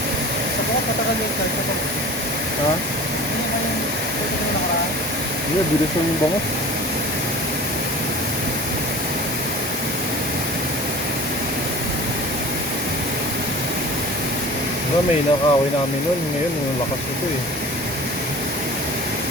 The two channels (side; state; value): both; normal; correlation 0.40